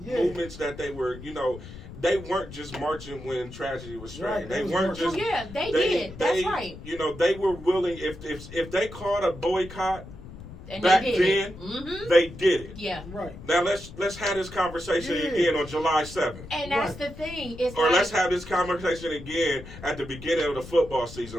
movements that they were. You know, they weren't just marching when tragedy was striking. They weren't just. Oh yeah, they did. That's right. You know, they were willing. If they called a boycott and back then, they did it. Yeah. Right. Now let's have this conversation again on July 7th. And that's the thing. It's or let's have this conversation again at the beginning of the football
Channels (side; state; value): left; noise; rumble, 14 dB below the sound